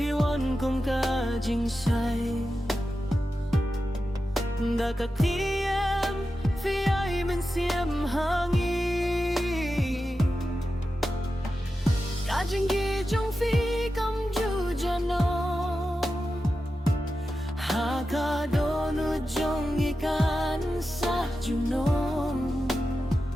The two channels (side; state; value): both; normal; correlation 0.91